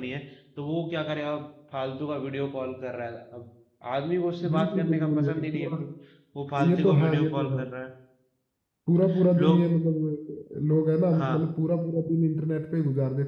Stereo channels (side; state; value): both; identical; correlation 1.00